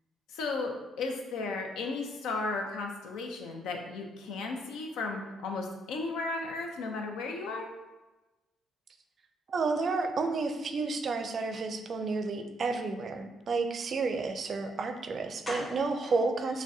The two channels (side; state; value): both; normal; correlation 0.73